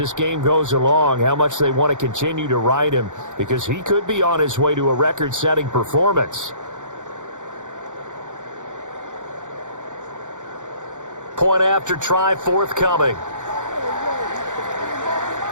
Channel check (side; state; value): left; late; 0.86 ms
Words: game goes along, how much they want to continue to ride him, because he could be on his way to a record-setting performance. Point after try forthcoming.